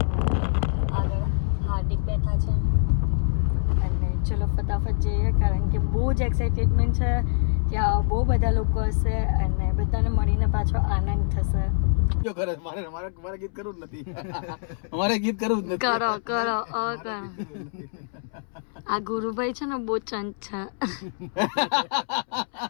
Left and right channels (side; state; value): right; silent; 62 dB below the other